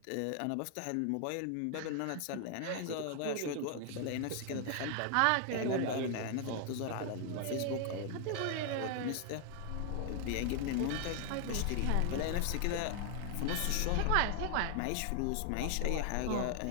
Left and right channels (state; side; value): different; both; correlation 0.00